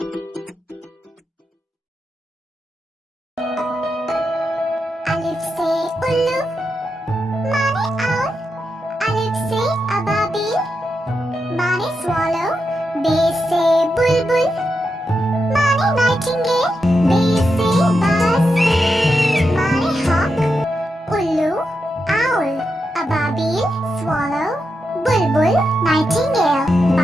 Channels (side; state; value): both; normal; correlation 0.86